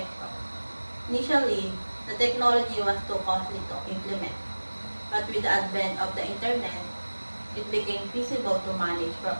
Initially, the technology was too costly to implement, but with the advent of the internet, it became feasible to manage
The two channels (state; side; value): inverted; both; correlation -1.00